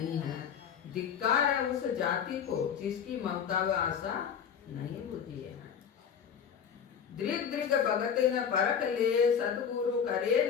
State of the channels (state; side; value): quieter; right; 7.7 dB